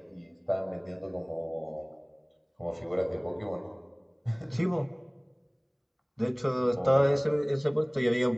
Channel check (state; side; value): identical; both; correlation 1.00